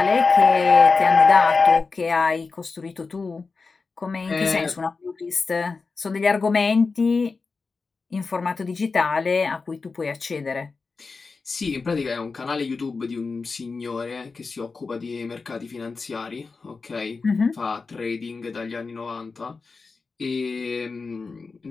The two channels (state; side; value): quieter; right; 4.4 dB